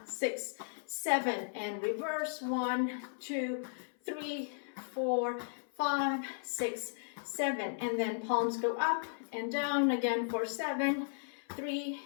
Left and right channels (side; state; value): right; silent; 54 dB below the other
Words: 6, 7, and reverse. 1, 2, 3, 4, 5, 6, 7, and then palms go up and down again for 7, 3,